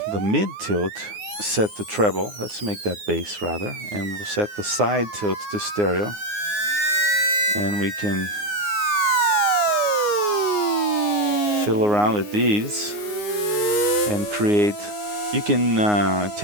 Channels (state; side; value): late; left; 9.6 ms